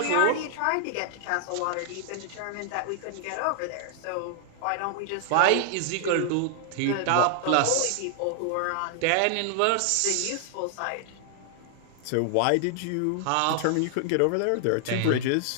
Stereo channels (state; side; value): different; both; correlation 0.00